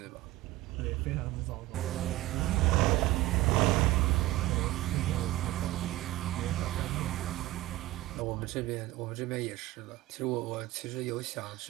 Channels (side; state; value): left; quieter; 17.2 dB